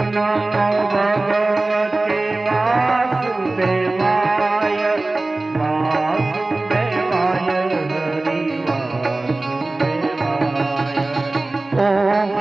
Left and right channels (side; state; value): left; quieter; 3.0 dB